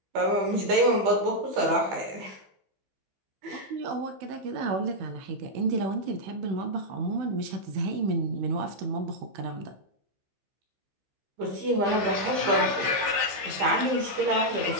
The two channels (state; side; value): late; left; 15 ms